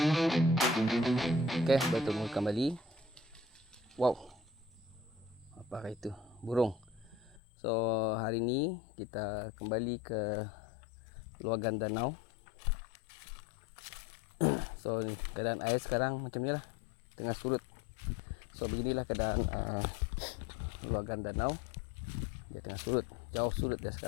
Okey, bertemu kembali. Wow. Apakah itu? Burung. So, hari ini kita kembali ke luagan danau. So, keadaan air sekarang macam ni lah. Tengah surut. So, beginilah keadaan luagan danau. Dia tengah surut. Jauh surut dia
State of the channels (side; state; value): right; drops out; at 7.4 s